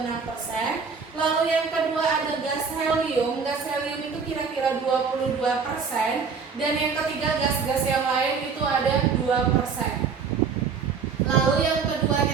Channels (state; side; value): quieter; left; 5.6 dB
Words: Lalu yang kedua ada gas helium. Gas helium itu kira-kira 22%. Dan yang ketiga gas-gas yang lain itu ada 2%. Lalu yang kedua